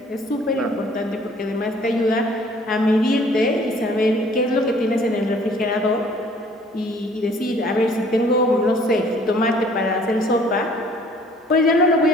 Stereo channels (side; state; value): both; normal; correlation 0.56